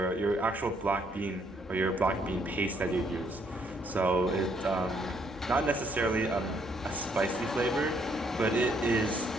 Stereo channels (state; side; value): normal; both; correlation 0.69